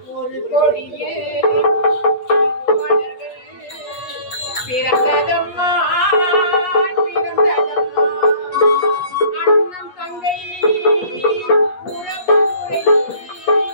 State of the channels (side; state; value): right; late; 8.2 ms